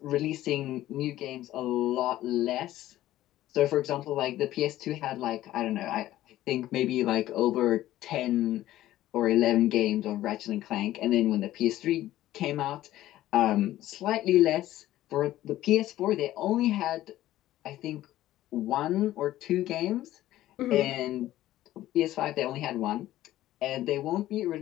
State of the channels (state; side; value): quieter; right; 14.5 dB